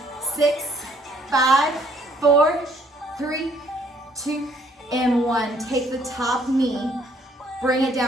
6, 5, 4, 3, 2, and 1. Take the top knee, bring it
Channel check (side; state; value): both; normal; correlation 0.64